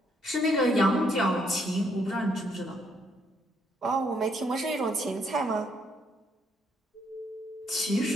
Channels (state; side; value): normal; both; correlation 0.71